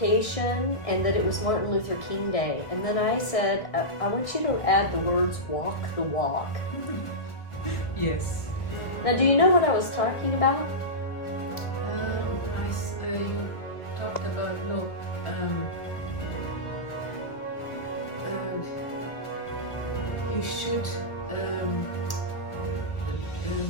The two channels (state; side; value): late; right; 1.2 ms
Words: and that it was Martin Luther King Day. And then I said, I want you to add the words "walk the walk." Yes. Now, do you know what I was talking about? You talked about you should I